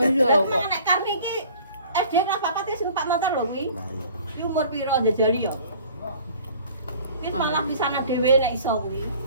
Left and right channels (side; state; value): both; inverted; correlation -0.49